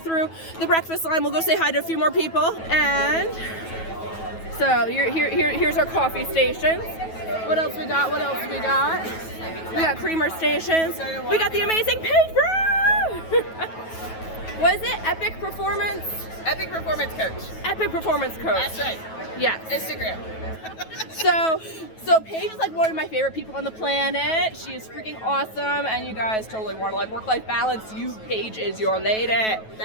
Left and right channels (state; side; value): late; right; 9.2 ms